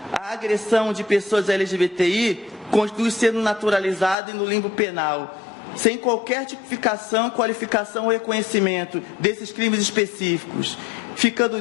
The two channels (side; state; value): right; drops out; at 4.2 s